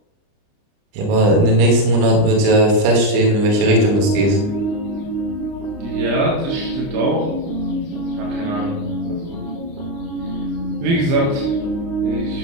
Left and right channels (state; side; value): late; left; 30 ms